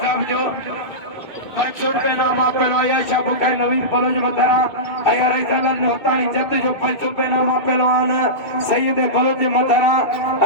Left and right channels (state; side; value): late; right; 2.2 ms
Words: साहब जो 500 रुपये नाम आपेलो आयशा बुखारी नवीन पलोज मथारा अया रईसालाल ने होतानी जत जो 500 रुपये नाम आपेलवान सैयद पलोज मथारा